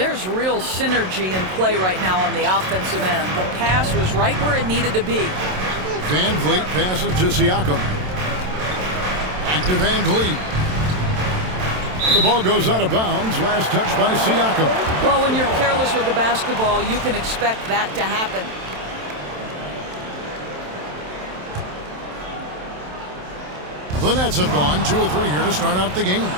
real synergy in play right now on the offensive end. The pass was right where it needed to be. VanVleet passes to Siakam. Back to VanVleet. And the ball goes out of bounds. Last touch by Siakam. Well, when you're careless with the basketball, you can expect that to happen. The Nets have gone 2 of 3 here to start out the game.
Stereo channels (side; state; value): left; late; 27 ms